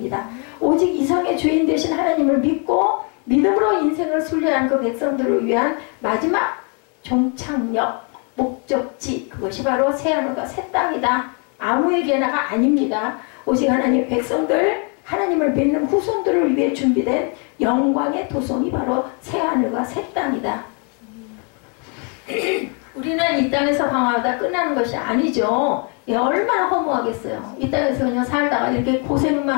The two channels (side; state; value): right; quieter; 37.4 dB